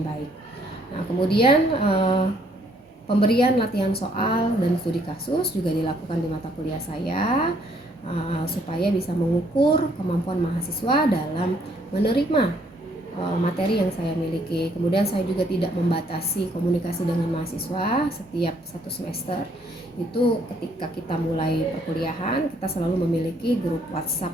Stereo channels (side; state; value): both; normal; correlation 0.66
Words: Nah, kemudian pemberian latihan soal dan studi kasus juga dilakukan di mata kuliah saya supaya bisa mengukur kemampuan mahasiswa dalam menerima materi yang saya miliki. Kemudian saya juga tidak membatasi komunikasi dengan mahasiswa setiap satu semester. Itu ketika kita mulai perkuliahan, kita selalu memiliki grup WhatsApp